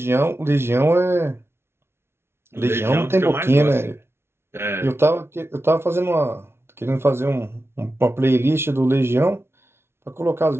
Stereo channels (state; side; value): late; left; 0.12 ms